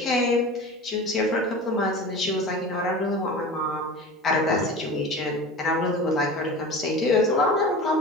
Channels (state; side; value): normal; both; correlation 0.34